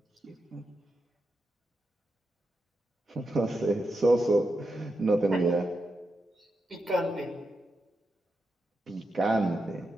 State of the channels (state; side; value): normal; both; correlation 0.87